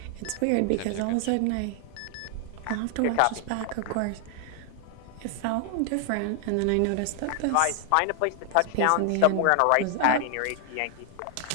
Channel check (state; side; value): different; both; correlation 0.00